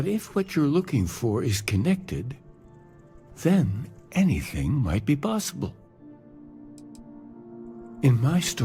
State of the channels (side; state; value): both; identical; correlation 1.00